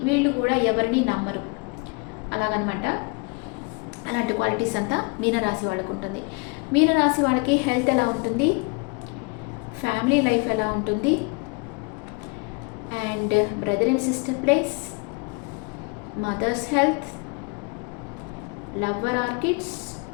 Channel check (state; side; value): quieter; right; 31.0 dB